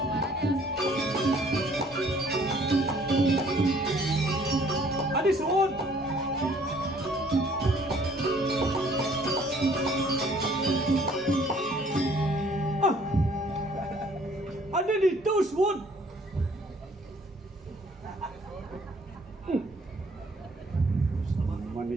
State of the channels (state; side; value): normal; both; correlation 0.59